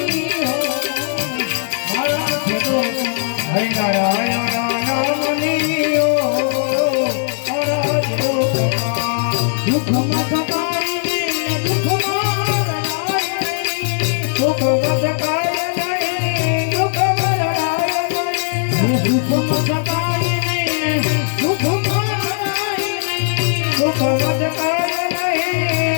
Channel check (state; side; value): silent; right; digital silence